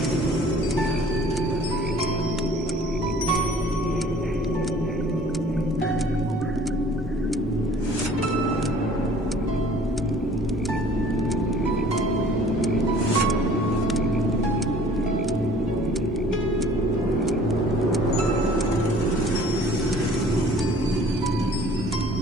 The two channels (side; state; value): both; normal; correlation 0.52